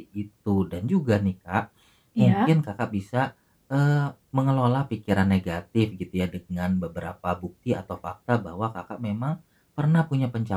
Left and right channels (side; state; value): both; identical; correlation 1.00